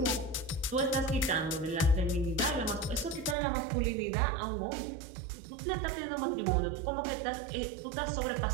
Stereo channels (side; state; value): left; drops out; at 3.4 s